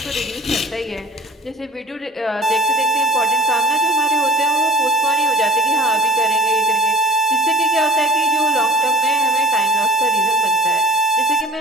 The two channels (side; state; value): both; normal; correlation 0.46